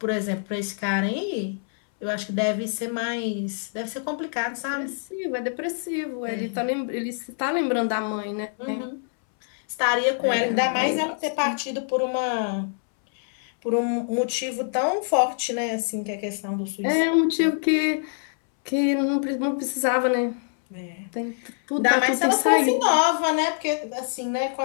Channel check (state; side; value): silent; right; 62 dB below the other